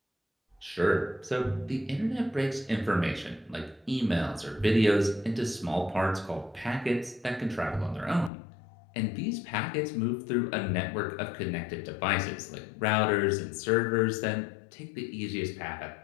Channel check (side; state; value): right; drops out; at 8.3 s